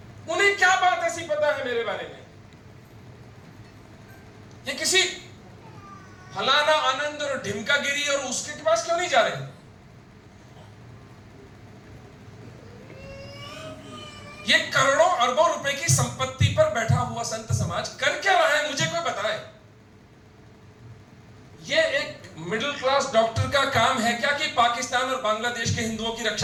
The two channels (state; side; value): identical; both; correlation 1.00